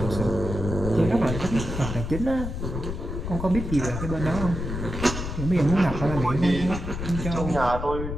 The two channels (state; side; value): noise; left; rumble, 5 dB below the sound